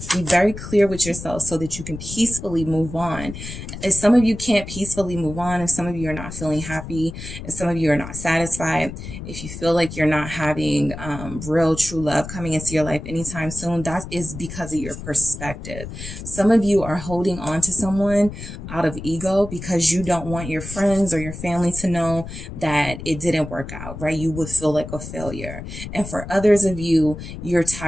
Be very clear with yourself so that you can peacefully move on. If some of you can't peacefully move on, if some of you are not feeling happy, if some of you are not satisfied, if you feel like you're not having real true love coming into your life anytime soon, that is because of your perspective. Some of you are holding on to someone out of ego because you don't want your friends or your family to know that it didn't work out, right? You would feel like a failure. And for others of you, you're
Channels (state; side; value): noise; left; rumble, 10 dB below the sound